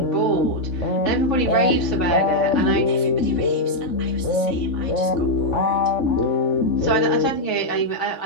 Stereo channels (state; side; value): late; right; 3.5 ms